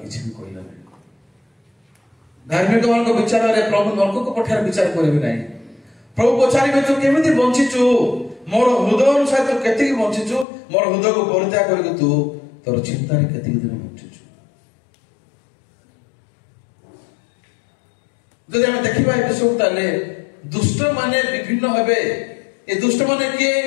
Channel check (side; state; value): right; drops out; at 10.5 s